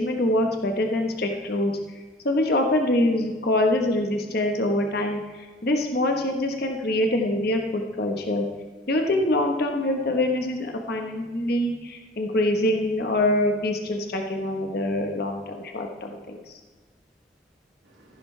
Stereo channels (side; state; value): both; normal; correlation 0.42